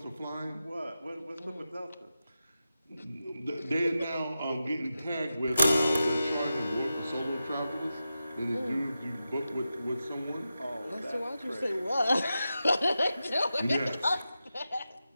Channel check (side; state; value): both; inverted; correlation -0.91